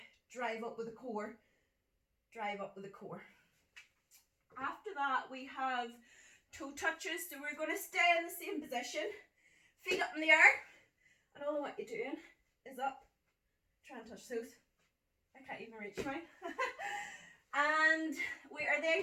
drive up with the core, drive up with the core. After that, we have toe touches. So we're going to stay in the same position, feet up in the air, and all what you're doing is up. Try and touch those. I can't even reach mine. And we are then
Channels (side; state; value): both; identical; correlation 1.00